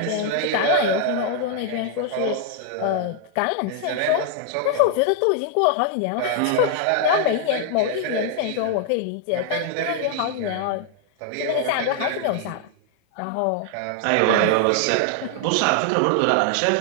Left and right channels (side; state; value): both; different; correlation 0.00